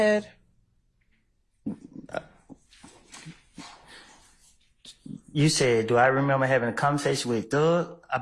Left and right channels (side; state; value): both; identical; correlation 1.00